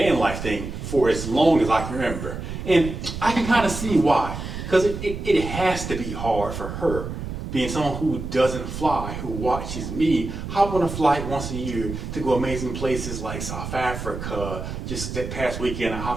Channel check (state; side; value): noise; right; rumble, 7 dB below the sound